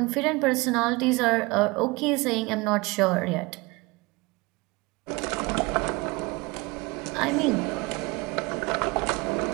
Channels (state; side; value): quieter; left; 24.6 dB